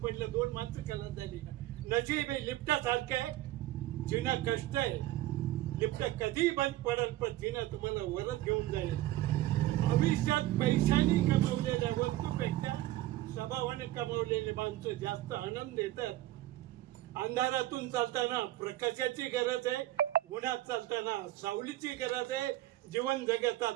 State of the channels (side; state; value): left; quieter; 15.5 dB